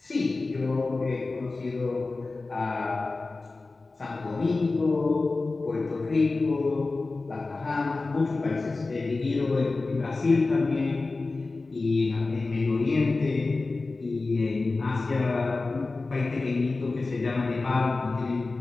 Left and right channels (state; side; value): quieter; right; 3.6 dB